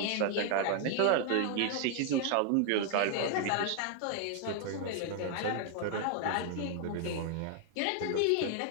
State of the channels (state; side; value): different; both; correlation 0.00